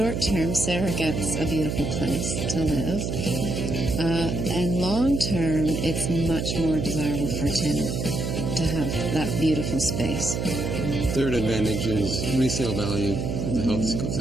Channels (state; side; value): noise; right; hum, 2 dB below the sound